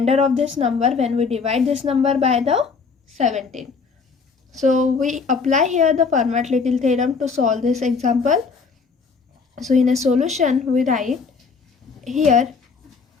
of this number when we divide this number by the 17. So we apply here the Fermat-Little theorem to solve this example. So in a solution, we write here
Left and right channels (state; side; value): quieter; right; 5.0 dB